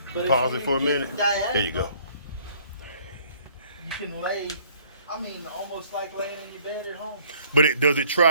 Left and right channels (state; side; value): inverted; both; correlation -0.59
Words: But if Pause you it for a get minute. diagonal, There you go. You can lay, almost like laying in your bed at home. But does it